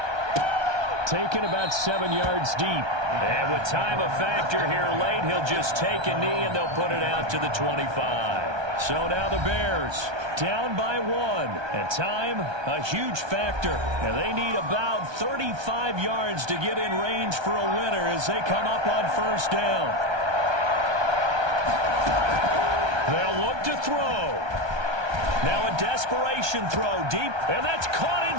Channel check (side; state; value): left; late; 1.3 ms